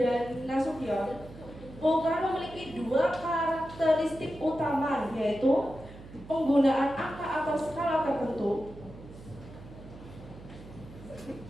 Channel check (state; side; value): noise; right; hum, 17 dB below the sound